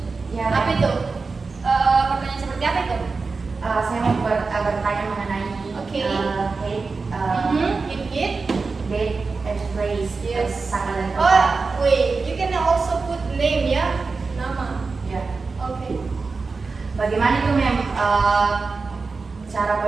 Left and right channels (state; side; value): quieter; left; 4.3 dB